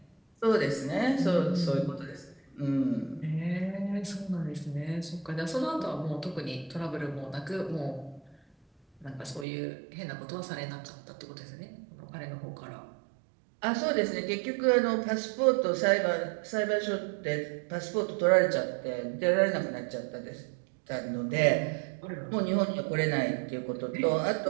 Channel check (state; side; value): drops out; left; at 9.5 s